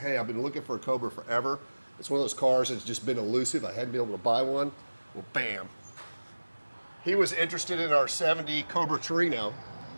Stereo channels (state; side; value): inverted; both; correlation -1.00